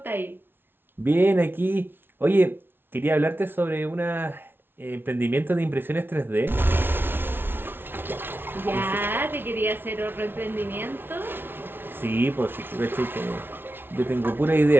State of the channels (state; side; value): late; left; 0.10 ms